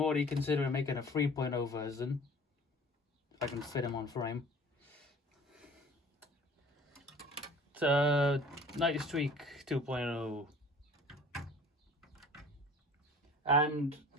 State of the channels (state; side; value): normal; both; correlation 0.46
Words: considering making a 3.0 version, if I can fit him on frame. It's Night Streak 2.0. And